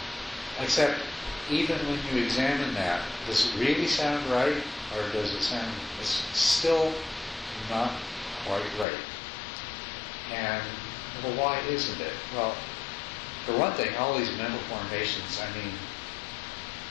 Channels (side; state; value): right; drops out; at 8.8 s